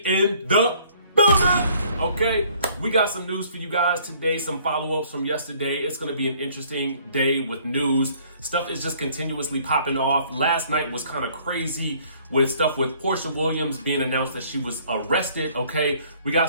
in the building. Okay, we got some news for you guys today, some follow-ups from yesterday. It's going to be an interesting day with news. Stuff is just continuously popping off. Last night was kind of crazy with stuff with Porsha Williams being announced that she was arrested. Okay, we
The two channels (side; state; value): both; inverted; correlation -0.59